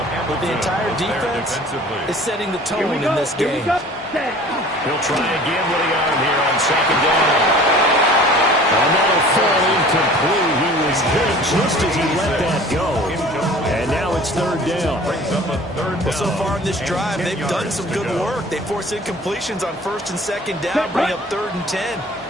but the entire defense is setting the tone in this game. He'll try again with the arm here on 2nd down. Another fall incomplete. He was hit just as he let that go. And now it's 3rd down. Well, so far in this drive, they've done some good work. They force incompletions on 1st and 2nd down, bring up 3rd and 10.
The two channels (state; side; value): normal; both; correlation 0.46